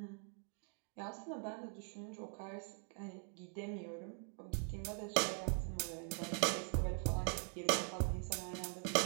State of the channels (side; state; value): left; quieter; 36.5 dB